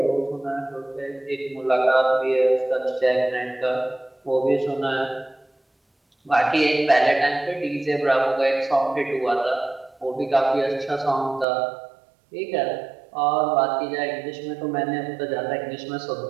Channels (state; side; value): drops out; left; at 11.5 s